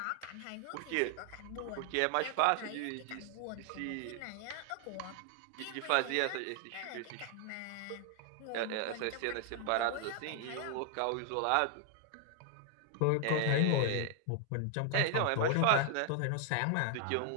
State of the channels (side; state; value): both; different; correlation 0.00